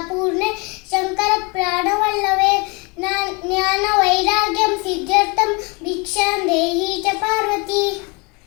ಪೂರ್ಣೆ ಶಂಕರ ಪ್ರಾಣವಲ್ಲವೇ, ಜ್ಞಾನ ವೈರಾಗ್ಯಂ ಸಿದ್ಧಾರ್ಥಂ ಭಿಕ್ಷಾಂ ದೇಹಿ ಚ ಪಾರ್ವತಿ.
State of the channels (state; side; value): quieter; right; 29.7 dB